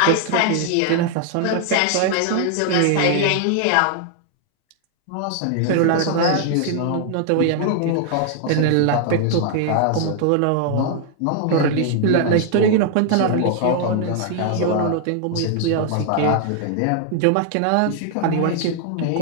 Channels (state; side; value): different; both; correlation 0.00